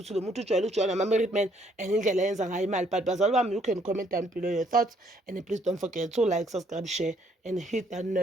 lo muntu ujwayele ama married man and indlela yenza ngayo imali. But bazalwa bami, you can comment down below your thoughts, and please don't forget to like, subscribe, share, and hit that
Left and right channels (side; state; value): both; normal; correlation 0.67